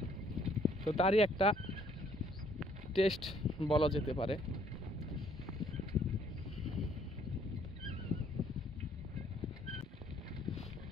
তো তারই একটা টেস্ট বলা যেতে পারে।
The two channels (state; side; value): normal; both; correlation 0.64